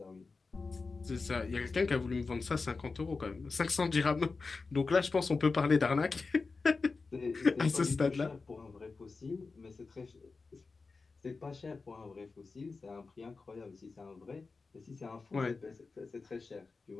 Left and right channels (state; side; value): quieter; right; 4.2 dB